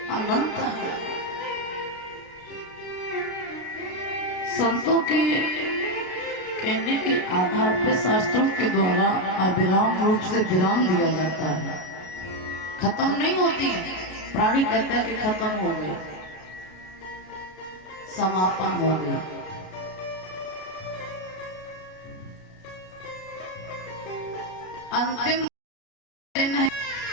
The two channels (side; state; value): right; late; 33 ms